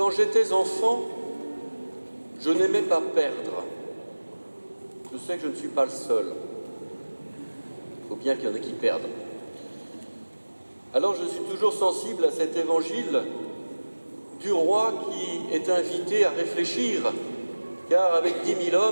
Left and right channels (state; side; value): inverted; both; correlation -1.00